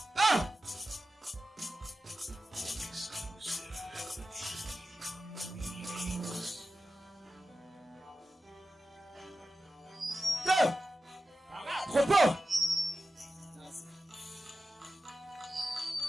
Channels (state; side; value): normal; both; correlation 0.93